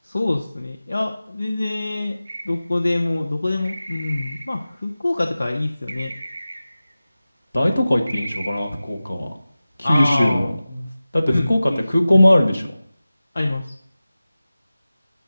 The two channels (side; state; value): both; inverted; correlation -0.96